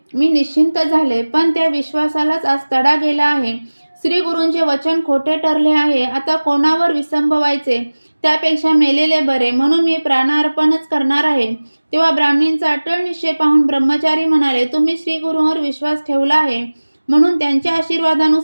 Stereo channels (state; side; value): inverted; both; correlation -1.00